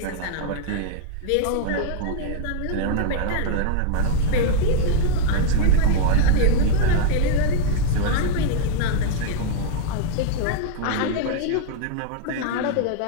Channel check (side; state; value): both; different; correlation -0.01